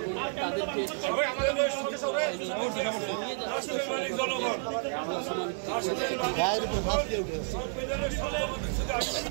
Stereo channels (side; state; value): left; silent; digital silence